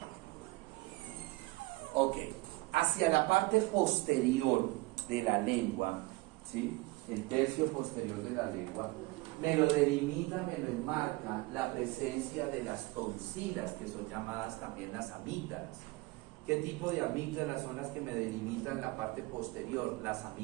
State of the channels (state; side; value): quieter; left; 22.3 dB